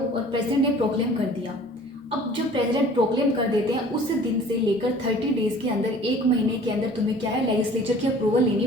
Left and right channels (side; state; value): both; normal; correlation 0.49